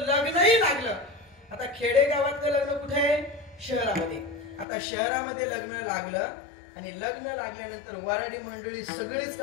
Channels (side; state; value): right; drops out; at 4.7 s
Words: लग्नही लागलं. आता खेडेगावातलं लग्न कुठे आहे? शहरामध्ये. आता शहरामध्ये लग्न लागलं आणि लग्न लागल्यानंतर वराडी मंडळी सगळीच